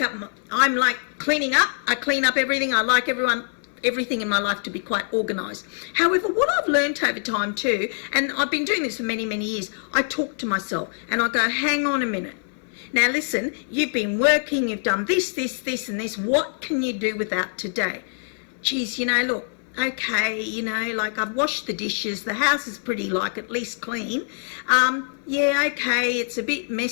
up. I'm like cleaning up. I clean up everything. I like everything in my life to be quite organised. However, what I've learned over time too, and I've been doing this for many, many years, I talk to myself and I go, hang on a minute. Now listen, you've been working, you've done this, and this. What can you do without today? Geez, look, okay, like I've washed the dishes, the house is pretty at least clean. Yeah, okay, it's a bit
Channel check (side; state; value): right; silent; 62 dB below the other